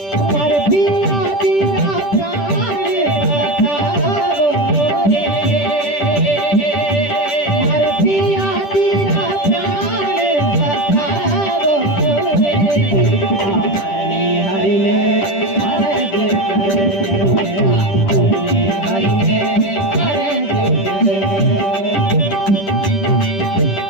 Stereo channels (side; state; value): right; late; 10 ms